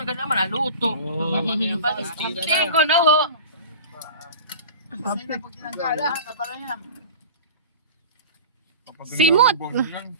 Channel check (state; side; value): inverted; both; correlation -0.36